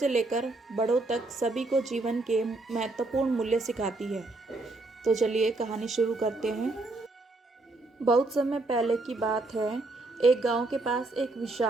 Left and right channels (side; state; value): left; quieter; 3.1 dB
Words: लेकर बड़ों तक सभी को जीवन के महत्वपूर्ण मूल्य सिखाती है। तो चलिए कहानी शुरू करते हैं। बहुत समय पहले की बात है। एक गांव के पास एक